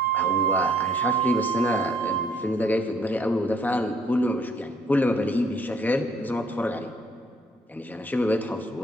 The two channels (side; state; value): both; normal; correlation 0.63